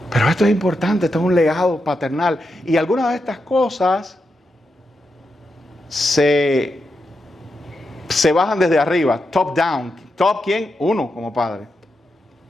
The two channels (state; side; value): normal; both; correlation 0.86